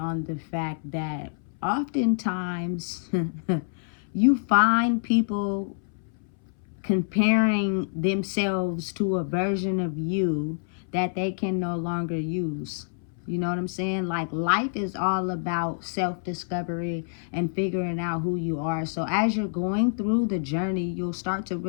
the fact that oftentimes you find people comparing themselves to a version of you that they can no longer use. You know what I'm saying? Like, life is all about self-discovery and figuring out who you are. So as you're going through the journey, you'll start to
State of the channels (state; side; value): silent; right; 60 dB below the other